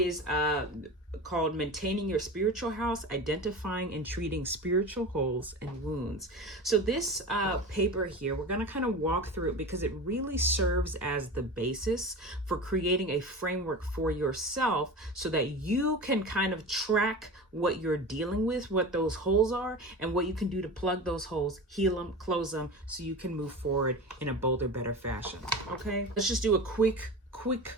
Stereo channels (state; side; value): normal; both; correlation 0.30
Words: called Maintaining Your Spiritual House, Identifying and Treating Spiritual Holes and Wounds. So this paper here, we're going to kind of walk through it because it really serves as the basis for creating a framework for yourself so that you can kind of track what you're dealing with, what those holes are, and what you can do to plug those holes, heal them, close them, so you can move forward in a bolder, better fashion. Okay, let's just do a quick